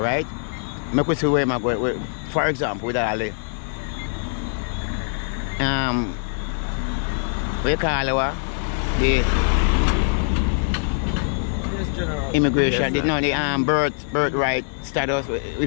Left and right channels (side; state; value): right; silent; digital silence